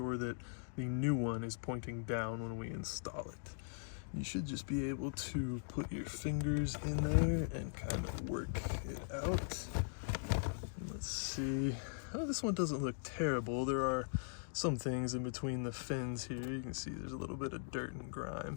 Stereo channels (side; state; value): right; silent; digital silence